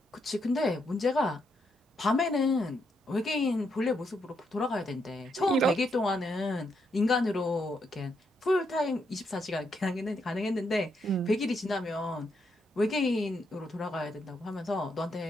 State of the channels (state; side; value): normal; both; correlation 0.78